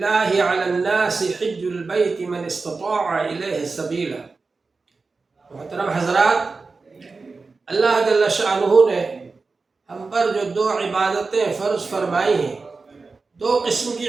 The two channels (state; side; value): quieter; left; 4.1 dB